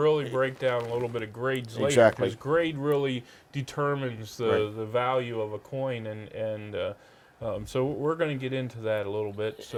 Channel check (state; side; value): identical; both; correlation 1.00